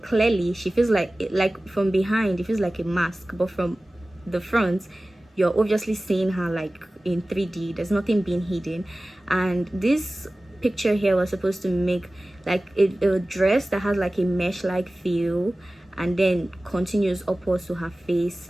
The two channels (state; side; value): normal; both; correlation 0.97